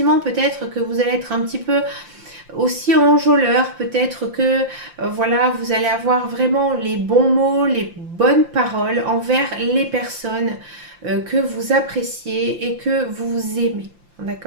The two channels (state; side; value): late; left; 5.8 ms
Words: peut-être que vous allez être un petit peu aussi enjôleur, peut-être que voilà, vous allez avoir vraiment les bons mots, les bonnes paroles envers les personnes que vous appréciez et que vous aimez.